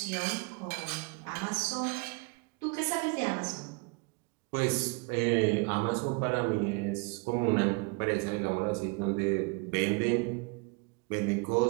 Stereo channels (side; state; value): left; quieter; 30.1 dB